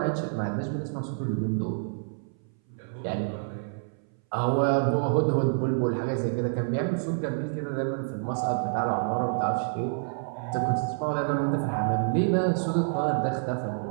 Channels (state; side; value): silent; left; 59 dB below the other